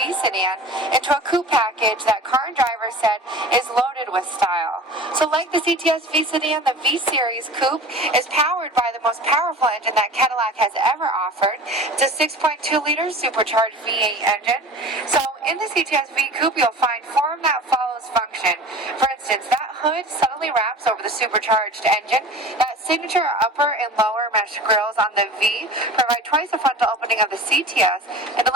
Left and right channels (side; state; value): both; normal; correlation 0.39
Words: sedan into a coupe package that car and driver said is loaded with style. So like the CTS-V sedan, the V Series Coupe is powered by the most powerful engine that Cadillac has ever offered. It's a 6.2-liter supercharged V8 engine. So in the CTS-V Coupe, you'll find form that follows function. For instance, that hood subtly wraps over the supercharged engine. That signature upper and lower mesh grills on the V provide twice the frontal opening of the CTS and